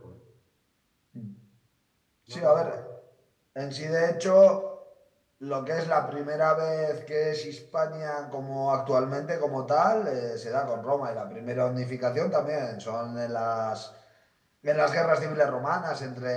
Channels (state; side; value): identical; both; correlation 1.00